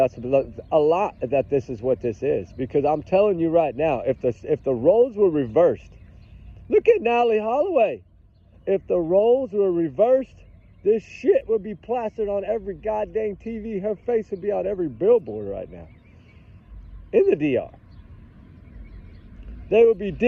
a lot that this is what this is. Because I'm telling you right now, if the roles were reversed, look at Natalie Holloway. If the roles were reversed, this shit would be plastered on every goddamn TV. Her face would be on every billboard right now. In the DR. They would be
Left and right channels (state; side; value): identical; both; correlation 1.00